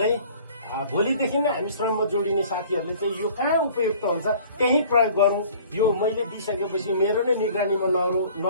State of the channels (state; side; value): inverted; both; correlation -0.50